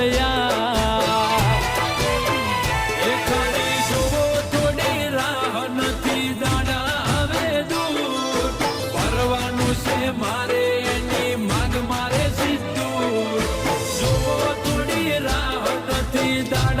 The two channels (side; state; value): both; identical; correlation 1.00